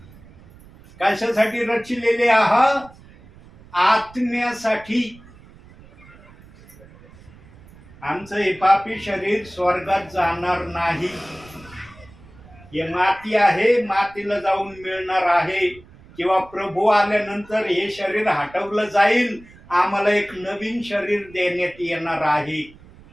कशासाठी रचिलेले आहात? आत्म्यासाठी. आमचं हे पापी शरीर स्वर्गात जाणार नाही. हे माती आहे, मातीला जाऊन मिळणार आहे, किंवा प्रभू आल्यानंतर हे शरीर हटवलं जाईल, आम्हाला एक नवीन शरीर देण्यात येणार आहे.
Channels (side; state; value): right; noise; rumble, 23 dB below the sound